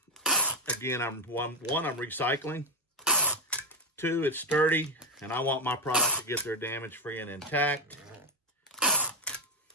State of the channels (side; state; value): both; normal; correlation 0.06